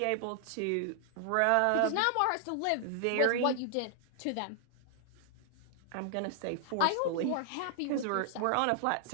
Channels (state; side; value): different; both; correlation 0.00